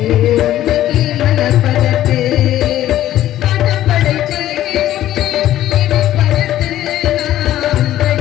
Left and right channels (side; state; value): right; quieter; 13.2 dB